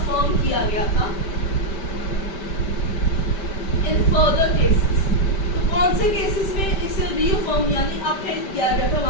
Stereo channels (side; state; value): right; late; 5.1 ms